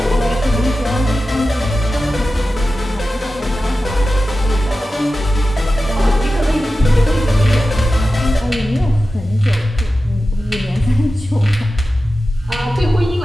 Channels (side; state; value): both; normal; correlation 0.93